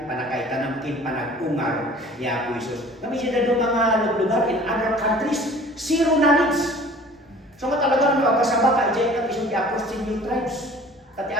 panakaitanamkin, panagungar ni Apo Isus. Kami siya na mga lugar in other countries, zero knowledge. So nga talaga nyo agkasama ka ijay ka isang i-approach si new tribes. At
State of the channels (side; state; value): both; normal; correlation 0.47